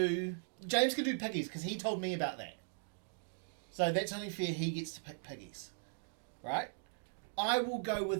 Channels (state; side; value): silent; left; digital silence